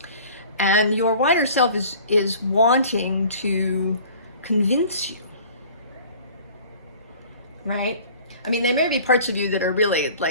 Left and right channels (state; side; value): inverted; both; correlation -0.47